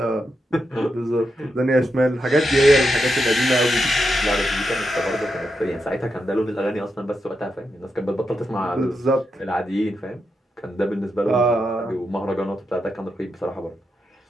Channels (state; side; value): normal; both; correlation 0.85